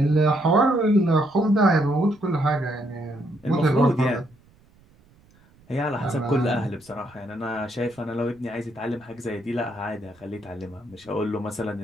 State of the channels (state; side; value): noise; right; rumble, 30 dB below the sound